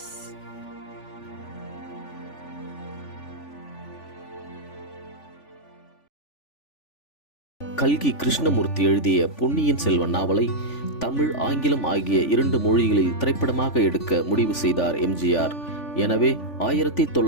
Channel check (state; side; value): late; right; 3.4 ms